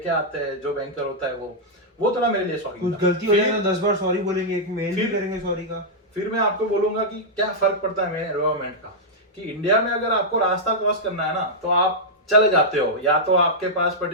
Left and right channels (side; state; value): both; normal; correlation -0.07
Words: आते हैं, जो बैंकर होता है वो थोड़ा मेरे लिए शॉकिंग कुछ गलती हो जाए तो 10 बार सॉरी बोलेंगे, एक मेल भी करेंगे सॉरी का। फिर मैं आपको बोलूंगा कि क्या फर्क पड़ता है मेरे एनवायरमेंट का, कि इंडिया में अगर आपको रास्ता क्रॉस करना है ना तो आप चले जाते हो, या तो आपके पास